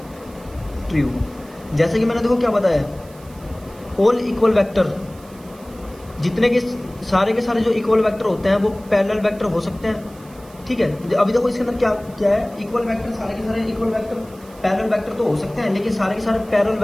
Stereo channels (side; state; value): right; noise; hiss, 25 dB below the sound